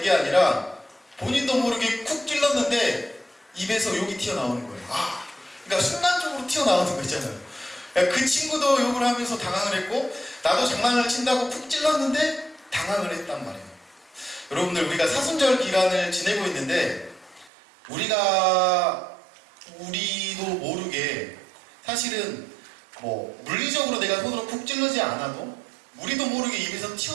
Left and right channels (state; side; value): drops out; left; at 17.5 s